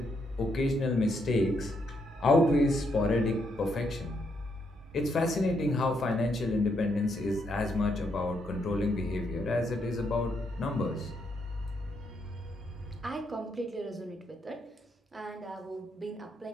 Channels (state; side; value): normal; both; correlation 0.77